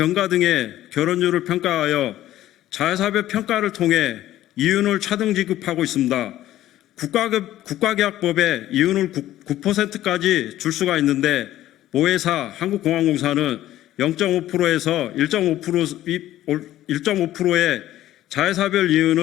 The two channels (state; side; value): quieter; right; 13.8 dB